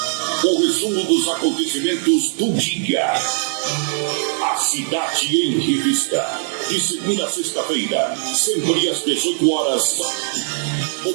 O resumo dos acontecimentos do dia. A Cidade em Revista. De segunda a sexta-feira, sempre às 18 horas.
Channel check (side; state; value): left; silent; digital silence